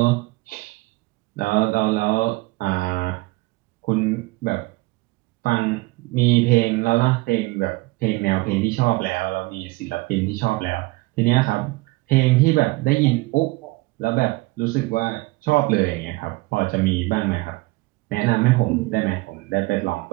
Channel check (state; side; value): quieter; left; 22.5 dB